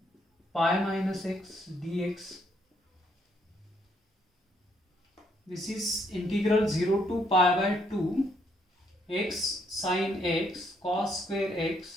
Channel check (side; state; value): both; normal; correlation 0.71